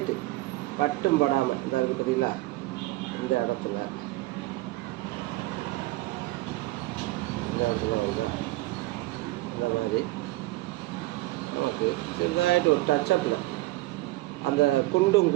பட்டும் படாமல் இந்த இருக்குது பார்த்தீங்களா, இந்த இடத்துல வந்தால் இந்த மாதிரி நமக்கு சிறுதாயிட்டு ஒரு டச்சப்பில் அந்த குண்டும்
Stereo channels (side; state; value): left; quieter; 19.4 dB